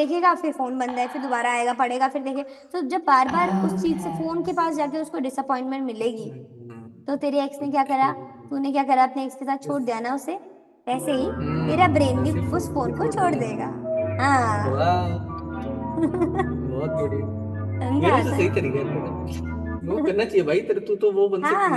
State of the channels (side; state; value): both; identical; correlation 1.00